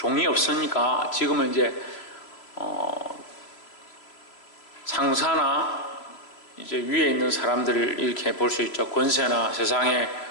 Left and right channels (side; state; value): right; late; 3.0 ms